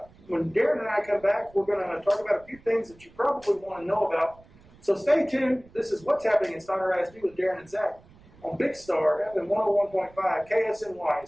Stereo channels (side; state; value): right; noise; rumble, 26 dB below the sound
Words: When Darren and I come back, we're going to talk about a few things that you probably want to know about. So stay tuned. This is What's Happening in Snyder ISD with Darren and Zack on Big Star FM 101.5 KSNY,